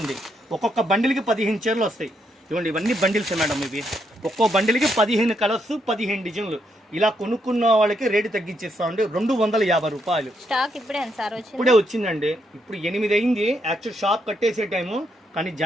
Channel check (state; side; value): normal; both; correlation 0.77